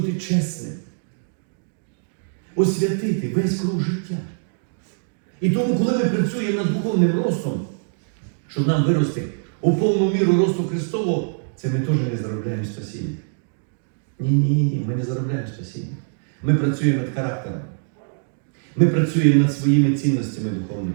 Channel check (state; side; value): silent; left; digital silence